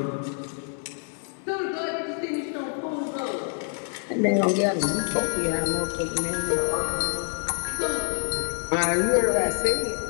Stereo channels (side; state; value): right; silent; 57 dB below the other